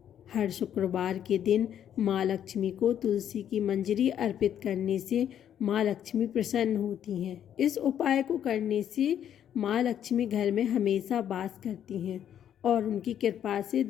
हर शुक्रवार के दिन माँ लक्ष्मी को तुलसी की मंजरी अर्पित करने से माँ लक्ष्मी प्रसन्न होती हैं। इस उपाय को करने से माँ लक्ष्मी घर में हमेशा वास करती हैं और उनकी कृपा से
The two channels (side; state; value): right; quieter; 9.8 dB